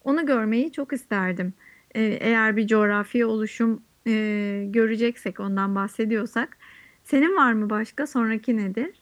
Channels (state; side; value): identical; both; correlation 1.00